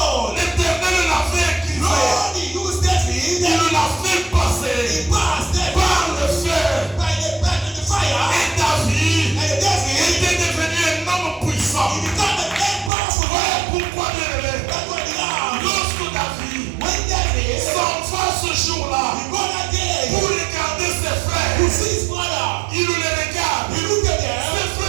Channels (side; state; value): left; drops out; at 12.9 s